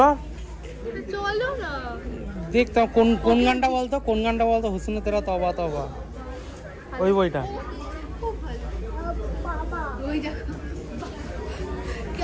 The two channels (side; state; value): both; identical; correlation 1.00